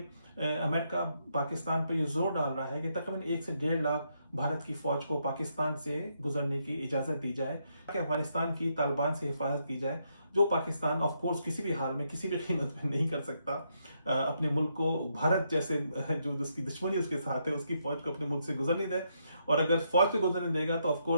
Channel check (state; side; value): inverted; both; correlation -0.78